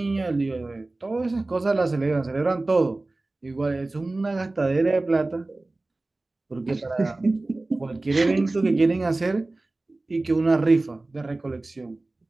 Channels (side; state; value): left; quieter; 3.0 dB